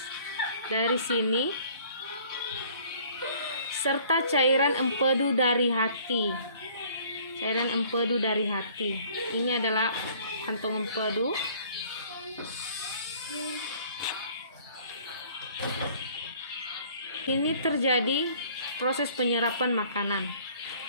Dari sini, serta cairan empedu dari hati. Cairan empedu dari hati. Ini adalah kantong empedu. Ini terjadi proses penyerapan makanan.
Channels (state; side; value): inverted; both; correlation -0.55